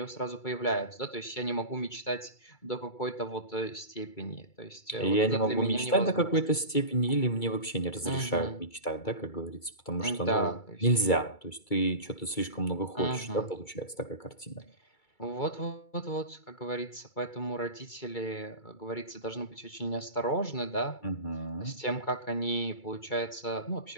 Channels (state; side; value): late; right; 2.3 ms